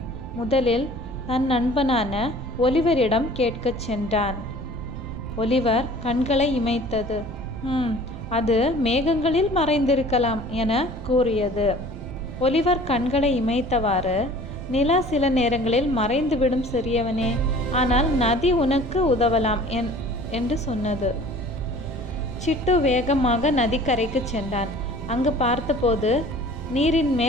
முதலில் தன் நண்பனான ஒலிவரிடம் கேட்கச் சென்றான். ஒலிவர் கண்களை இமைத்தது. அது மேகங்களில் மறைந்திருக்கலாம் என கூறியது. ஒலிவர் கண்களை இமைத்தவாறு, நிலா சில நேரங்களில் மறைந்துவிடும் சிறியவனே, ஆனால் நதி உனக்கு உதவலாம் என்று சொன்னது. சிட்டு வேகமாக நதிக்கரைக்கு சென்றான். அங்கு பார்த்தபோது நீரின்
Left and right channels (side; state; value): right; noise; rumble, 10 dB below the sound